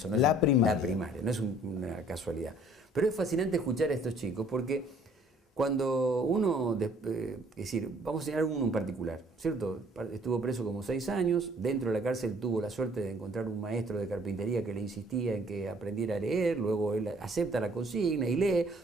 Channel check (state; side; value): normal; both; correlation 0.57